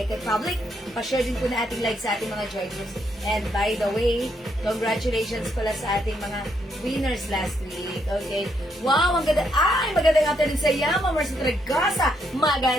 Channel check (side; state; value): both; normal; correlation 0.76